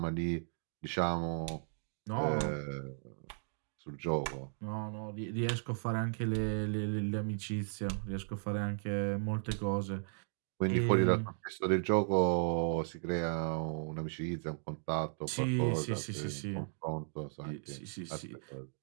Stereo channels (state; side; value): silent; left; digital silence